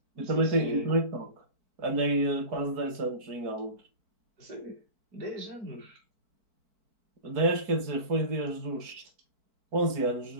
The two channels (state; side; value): late; left; 4.5 ms